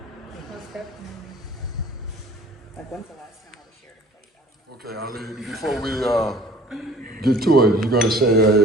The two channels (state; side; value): normal; both; correlation 0.51